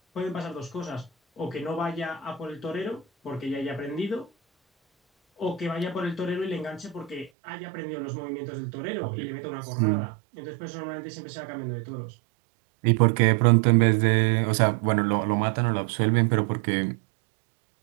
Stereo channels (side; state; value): left; drops out; at 7.3 s